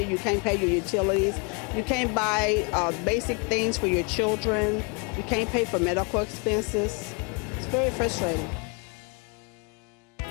You can't pay your utilities. You can't buy basic things for your children. You can't pay for medical expenses. It's very frustrating.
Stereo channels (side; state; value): right; quieter; 33.3 dB